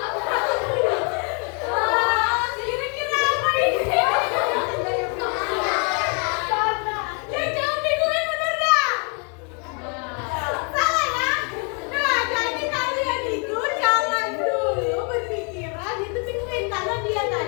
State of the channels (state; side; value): quieter; right; 37.3 dB